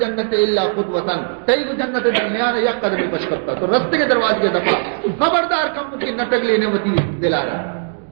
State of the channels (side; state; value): left; silent; digital silence